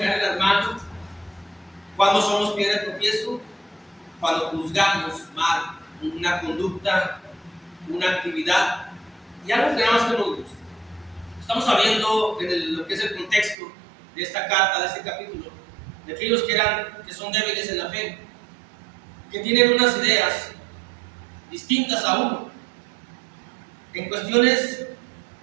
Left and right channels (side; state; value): left; drops out; at 13.6 s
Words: al hermano, cuando somos piedra de tropiezo, cuando juzgamos mal una conducta, una actividad y algo que nada más que nos gusta. Estamos sabiendo en lo que es el contexto de esta carta, de este capítulo, de aquellos que son débiles en la fe, que tienen unas ideas distintas a uno, en cuestiones